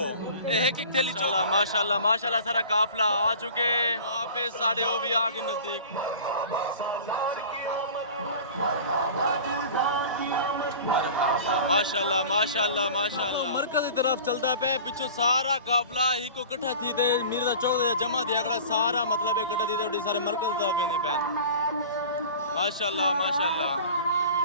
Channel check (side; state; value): both; inverted; correlation -0.40